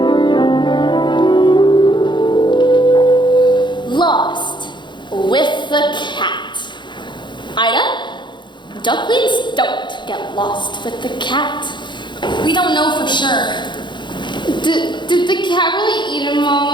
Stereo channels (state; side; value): late; right; 0.22 ms